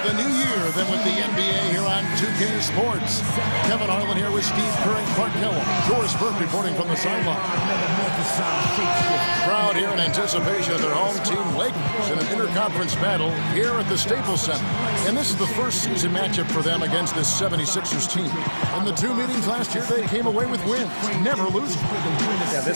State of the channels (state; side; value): inverted; both; correlation -1.00